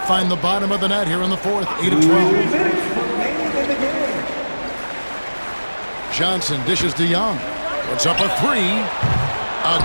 find the bottom of the net here in the fourth. 8 of 12. Johnson dishes to Young. Puts up a 3.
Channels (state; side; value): inverted; both; correlation -1.00